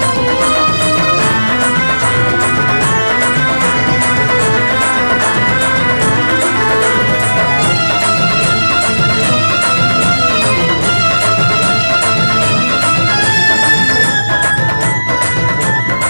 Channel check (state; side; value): inverted; both; correlation -1.00